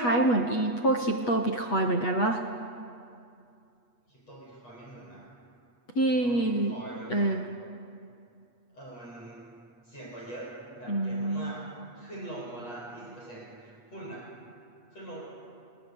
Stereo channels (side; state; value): right; late; 8.3 ms